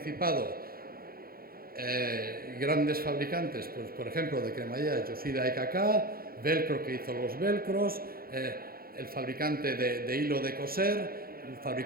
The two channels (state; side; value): late; left; 0.43 ms